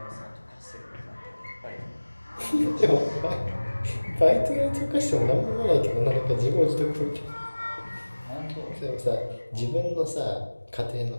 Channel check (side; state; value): both; inverted; correlation -1.00